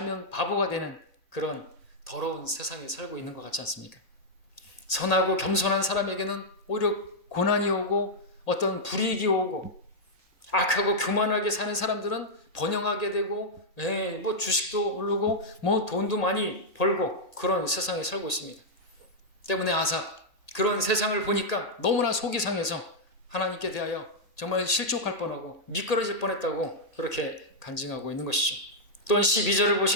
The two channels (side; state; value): right; late; 1.8 ms